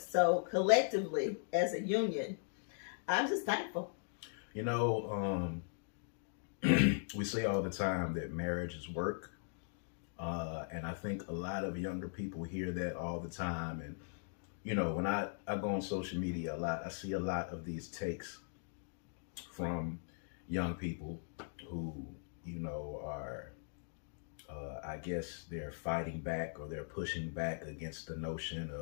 So collectively, as a union, I'm just thankful. We say all the time that marriage is work. And I think a lot of younger people hear that all the time. And, when I go on social media a lot, I see a lot of these takes from young people who, are, I guess they're fighting back or they're pushing back against the notion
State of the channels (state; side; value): silent; right; digital silence